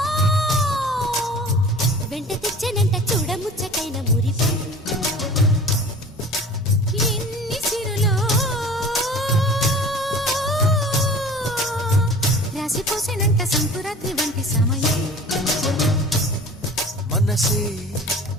వెంట తెచ్చనంట చూడముచ్చటైన మురిపం ఎన్ని సిరులో రాసిపోసేనంట సంకురాత్రి వంటి సమయం మనసే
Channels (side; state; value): both; normal; correlation 0.42